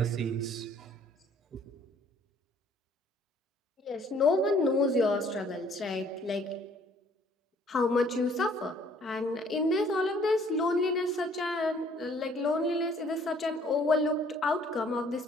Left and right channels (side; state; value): both; normal; correlation 0.60